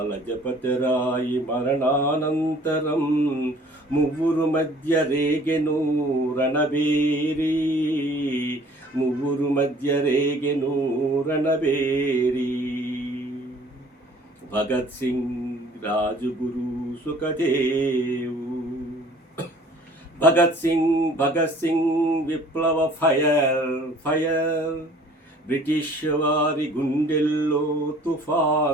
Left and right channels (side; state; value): both; normal; correlation 0.53